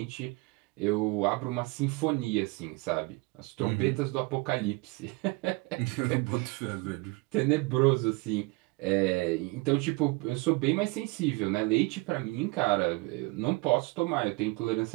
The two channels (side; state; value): left; quieter; 25.8 dB